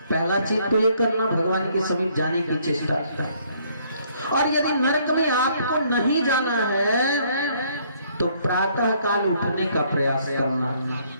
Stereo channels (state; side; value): inverted; both; correlation -0.65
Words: पहला चीज तो ये करना, भगवान के समीप जाने की चेष्टा। और यदि नरक में आपको नहीं जाना है तो प्रातः काल उठने का प्रयास करना।